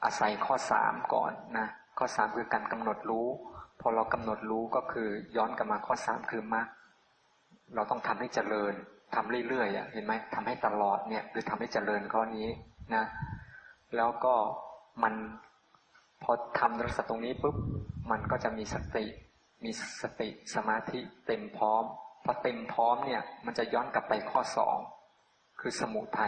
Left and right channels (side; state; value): both; identical; correlation 1.00